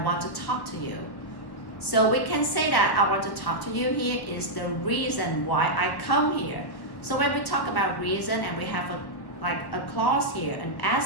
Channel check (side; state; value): right; late; 1.3 ms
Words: want to talk to you. So we can say that I want to talk to you here is the reason why I come here. So when we talk about reason and we have a clause here, an